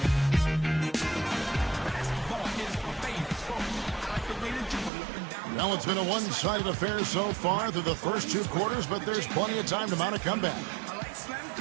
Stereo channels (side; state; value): left; drops out; at 4.9 s